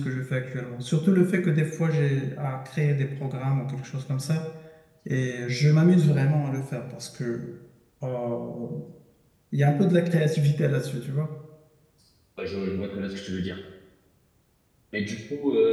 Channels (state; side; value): identical; both; correlation 1.00